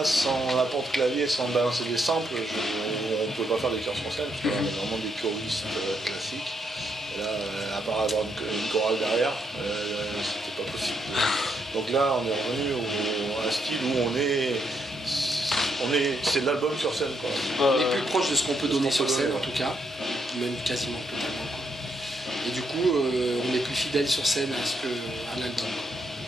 sans l'apport de clavier, sans balancer des samples, on ne peut pas faire des chœurs sur scène parce qu'on a vraiment des choristes classiques. Et là, à part avoir une chorale derrière, c'était pas possible. Donc là, on est revenu à un style où c'est de l'album sur scène, quoi. On est plus proche de ce qu'on peut donner sur scène, en tout cas, même quasiment totalement. Et du coup, on est plus fidèle sur scène à l'album.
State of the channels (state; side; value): normal; both; correlation 0.77